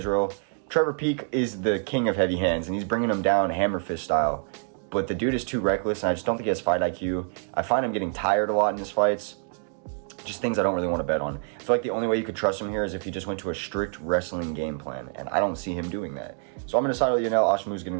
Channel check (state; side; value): silent; left; 56 dB below the other